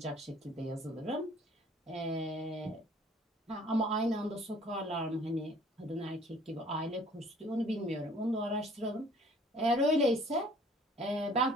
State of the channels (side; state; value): both; normal; correlation 0.55